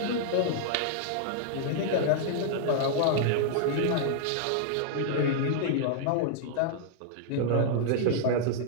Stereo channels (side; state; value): both; different; correlation -0.01